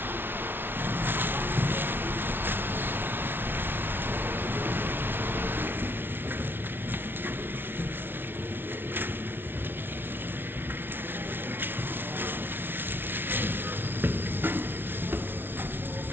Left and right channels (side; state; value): left; late; 0.10 ms